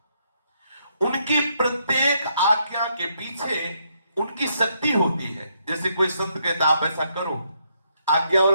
उनकी प्रत्येक आज्ञा के पीछे उनकी शक्ति होती है। जैसे कोई संत कहता आप ऐसा करो, आज्ञा और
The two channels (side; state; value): both; inverted; correlation -0.75